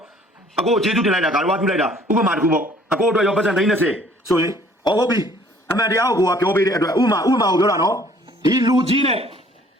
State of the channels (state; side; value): normal; both; correlation 0.57